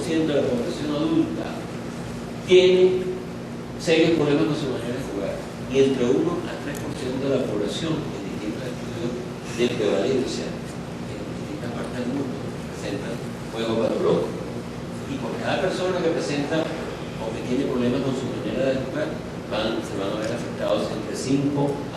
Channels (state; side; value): identical; both; correlation 1.00